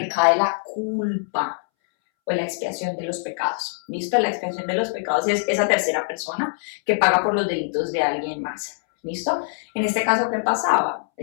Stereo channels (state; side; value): silent; right; 63 dB below the other